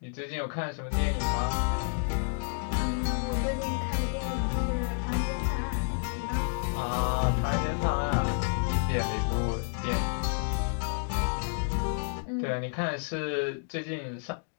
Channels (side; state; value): right; silent; digital silence